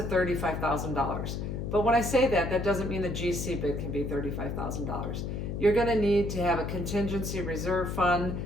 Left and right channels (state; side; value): noise; left; hum, 4 dB below the sound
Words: $35,000. But when I say that, that doesn't mean the GC bid can be $35,000. You're going to need to have a contingency reserve fund,